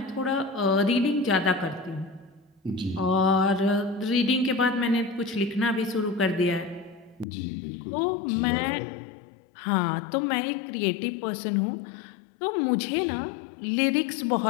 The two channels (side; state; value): right; drops out; at 7.2 s